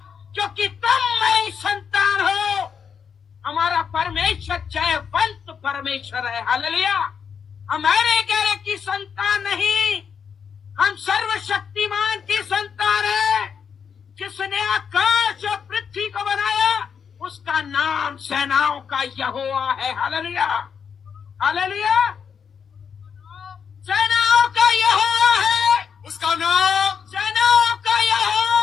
क्योंकि तुम मेरी संतान हो। हमारा परमेश्वर जयवंत परमेश्वर है। हालेलुया। हमारे गैर की संतान नहीं, हम सर्वशक्तिमान की संतान है। जिसने आकाश और पृथ्वी को बनाया उसका नाम सेनाओं का यहोवा है। Hallelujah, hallelujah. सेनाओं का यहोवा है, उसका नाम सेनाओं का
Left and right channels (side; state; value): right; quieter; 6.8 dB